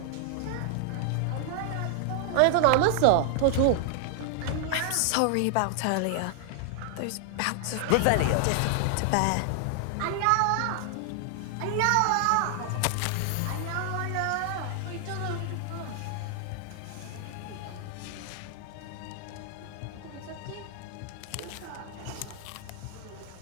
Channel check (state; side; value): different; both; correlation 0.00